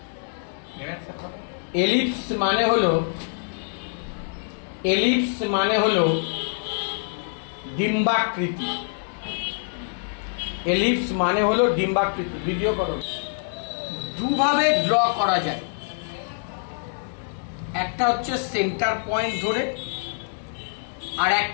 Ellipse মানে হলো ডিম্বাকৃতি। এলিপস মানে হলো ডিম্বাকৃতি। ভিডিও করো। দুভাবে ড্র করা যায়, একটা হচ্ছে সেন্টার পয়েন্ট ধরে, আর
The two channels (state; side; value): silent; right; digital silence